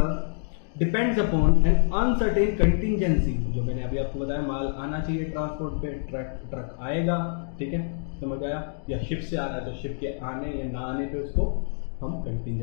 depends upon N uncertain contingency. जो मैंने अभी आपको बताया, माल आना चाहिए ट्रांसपोर्ट पे, ट्रक आएगा, ठीक है, समझ आया, या शिप से आ रहा है तो शिप के आने या ना आने पे उसको हम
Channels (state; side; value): silent; right; digital silence